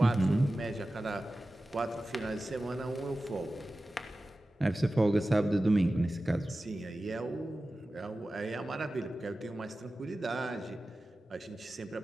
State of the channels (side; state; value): both; normal; correlation 0.95